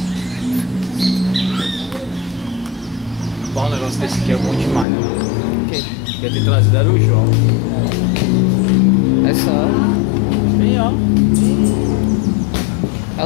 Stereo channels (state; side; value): drops out; right; at 4.9 s